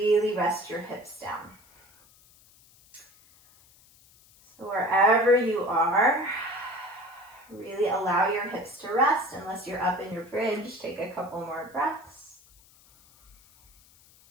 rest your hips down. So wherever you are, really allow your hips to rest. Unless you're up in your bridge, take a couple more breaths.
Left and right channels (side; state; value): left; noise; hiss, 27 dB below the sound